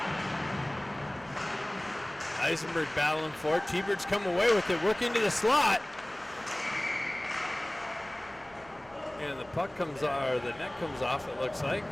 Eisenberg battling for it. T-Birds come away with it. Work into the slot. And the puck comes or the net comes off, it looks like.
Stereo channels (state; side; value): noise; right; rumble, 26 dB below the sound